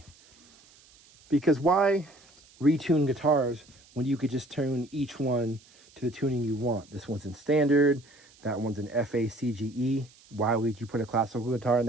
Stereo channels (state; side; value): noise; right; hiss, 27 dB below the sound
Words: Because why retune guitars when you could just tune each one to the tuning you want? This one's in standard, that one's in FA CGE. Why would you put a classical guitar in